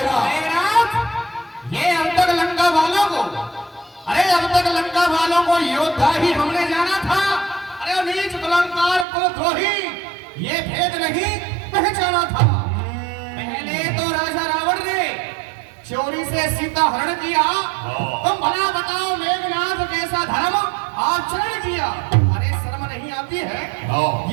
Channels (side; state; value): left; drops out; at 9.1 s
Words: मेघनाथ, ये अब तक लंका वालों को, अरे अब तक लंका वालों को योद्धा ही हमने जाना था। अरे नीच कुलंकार कुलद्रोही ये भेद नहीं पहचाना था। पहले तो राजा रावण ने चोरी से सीता हरण किया, तुम भला बताओ मेघनाथ कैसा धर्म आचरण किया। अरे शर्म नहीं आती है?